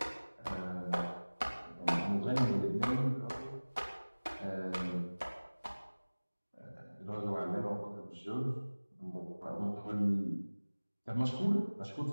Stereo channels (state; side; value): inverted; both; correlation -1.00